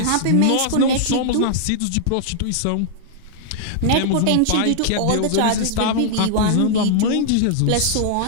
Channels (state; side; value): different; both; correlation -0.01